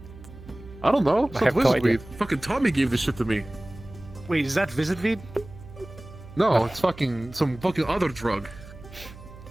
I don't know. It's I not have no Wizard idea. Weed. Fucking Tommy gave this shit to me. Wait, is that Visit Vid? No, it's fucking some fucking other drug.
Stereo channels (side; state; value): right; noise; hum, 17 dB below the sound